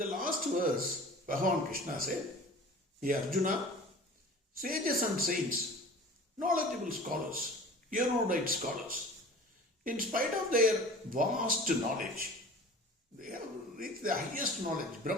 last verse, Bhagwan Krishna said, Hey Arjuna, sages and saints, knowledgeable scholars, erudite scholars, in spite of their vast knowledge, they have reached the highest knowledge,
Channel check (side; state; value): both; normal; correlation 0.41